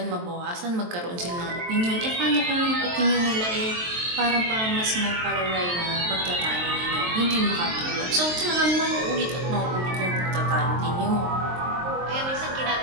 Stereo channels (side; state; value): left; late; 23 ms